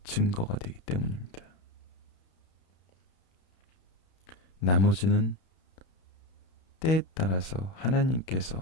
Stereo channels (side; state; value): right; late; 32 ms